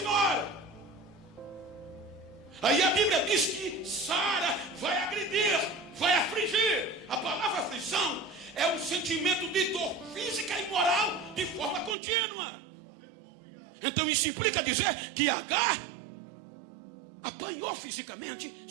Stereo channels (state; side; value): drops out; left; at 12.0 s